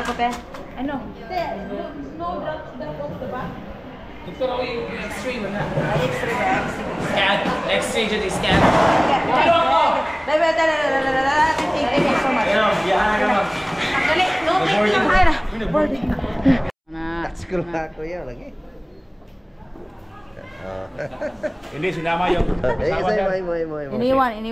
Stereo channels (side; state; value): both; identical; correlation 1.00